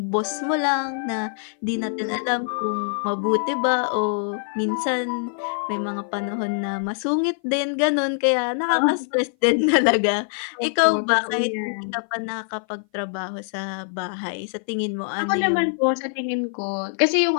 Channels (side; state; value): right; silent; 58 dB below the other